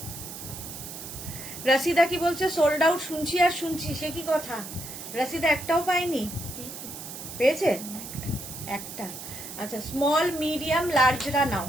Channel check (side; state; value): right; noise; hiss, 10 dB below the sound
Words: রাশিদা কি বলছে? সোল্ড আউট শুনছি আর শুনছি, সে কি কথা? রাশিদা একটাও পাইনি, পেয়েছে একটা। আচ্ছা, স্মল মিডিয়াম লার্জরা নাও।